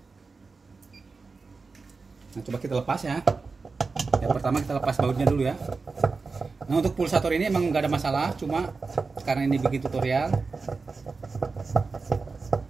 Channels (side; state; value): left; quieter; 4.3 dB